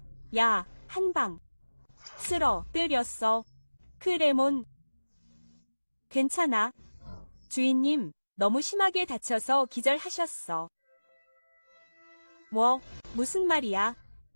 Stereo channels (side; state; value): both; inverted; correlation -1.00